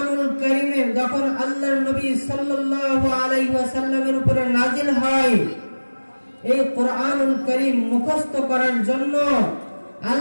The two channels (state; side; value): inverted; both; correlation -1.00